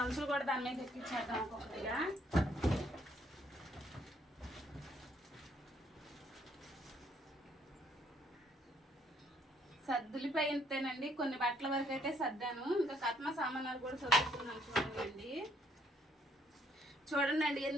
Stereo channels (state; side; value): normal; both; correlation 0.67